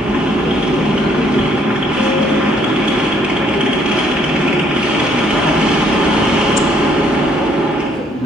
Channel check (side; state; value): both; normal; correlation 0.66